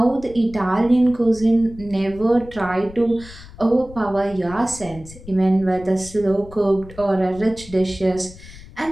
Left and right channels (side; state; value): left; noise; rumble, 18 dB below the sound